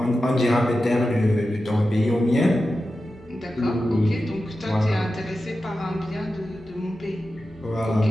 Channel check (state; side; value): normal; both; correlation 0.92